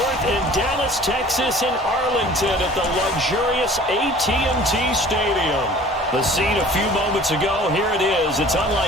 and Dallas, Texas, and Arlington at the luxurious AT&T Stadium. The scene a few moments ago, here it is. It's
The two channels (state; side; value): normal; both; correlation 0.47